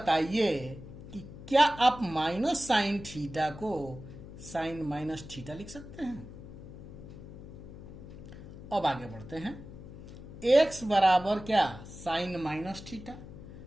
कि क्या आप माइनस साइन थीटा को साइन माइनस थीटा लिख सकते हैं। अब आगे बढ़ते हैं, एक्स बराबर क्या, साइन माइनस थीटा,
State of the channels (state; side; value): noise; left; hum, 14 dB below the sound